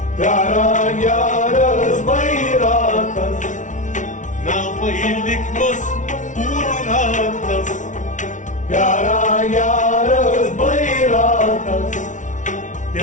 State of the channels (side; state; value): right; late; 0.37 ms